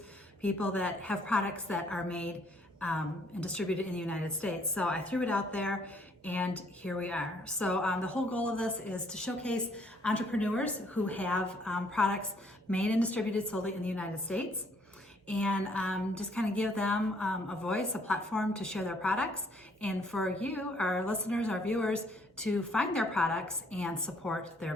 people that have products that are made and distributed in the United States. So I threw it out there. And here we are. So the whole goal of this is to showcase entrepreneurs who have products made and distributed solely in the United States, and just kind of give them a voice, a platform to share their products, and for you, our listeners, our viewers, to find their products and support their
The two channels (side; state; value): both; normal; correlation 0.65